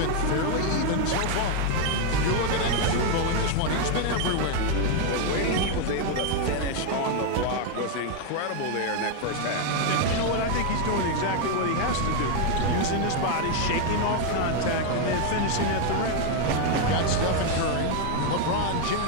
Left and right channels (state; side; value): different; both; correlation 0.01